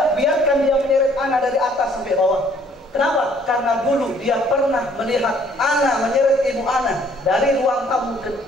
dia menyeret anak dari atas sampai bawah. Kenapa? Karena dulu dia pernah melihat anak menyeret ibu anak dari ruang tamu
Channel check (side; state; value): both; normal; correlation 0.61